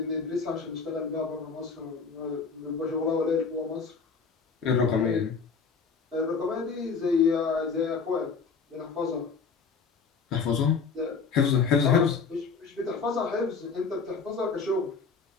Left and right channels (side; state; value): right; quieter; 5.2 dB